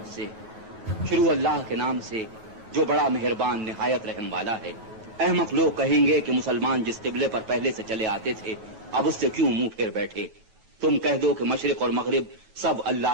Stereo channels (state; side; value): late; left; 9.3 ms